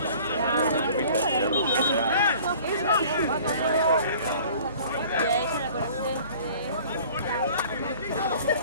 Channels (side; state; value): both; inverted; correlation -0.48